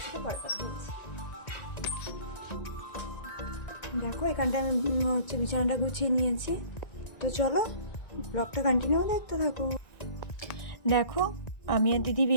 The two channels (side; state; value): right; late; 1.9 ms